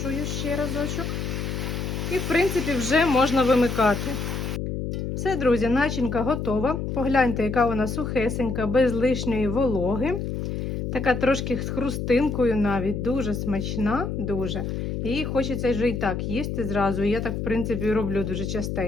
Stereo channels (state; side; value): noise; left; hum, 3 dB below the sound